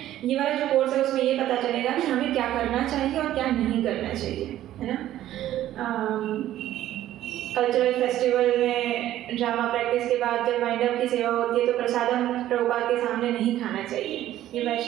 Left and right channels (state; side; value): quieter; left; 13.1 dB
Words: ये वाला जो कोर्स है उसमें ये पता चलेगा कि हमें क्या करना चाहिए और क्या नहीं करना चाहिए, है ना। कल्चरल फेस्टिवल में ड्रामा प्रैक्टिस के बाद जब वाइंड अप की सेवा होती है तो प्रसादम प्रभुपाद के सामने नहीं खाना चाहिए, ये